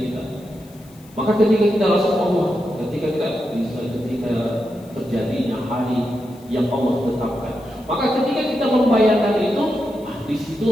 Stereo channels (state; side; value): noise; left; hiss, 27 dB below the sound